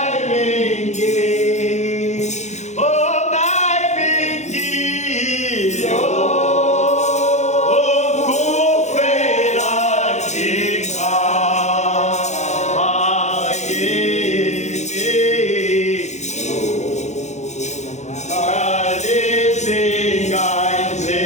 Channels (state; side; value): late; right; 0.33 ms